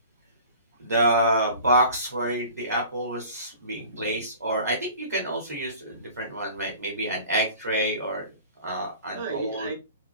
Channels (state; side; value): inverted; both; correlation -0.44